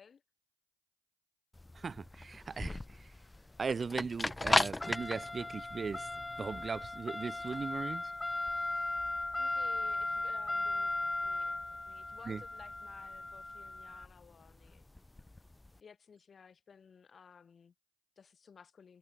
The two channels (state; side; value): normal; both; correlation 0.95